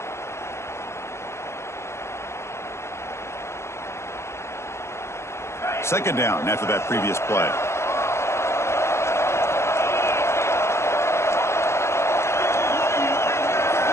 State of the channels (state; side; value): late; right; 0.13 ms